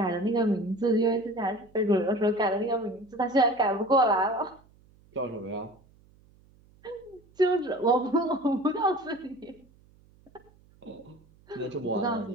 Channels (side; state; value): right; noise; hum, 29 dB below the sound